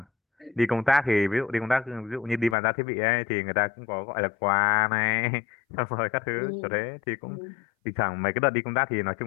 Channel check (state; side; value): drops out; right; at 2.6 s